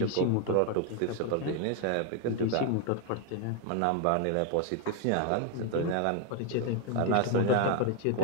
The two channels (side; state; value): both; different; correlation 0.01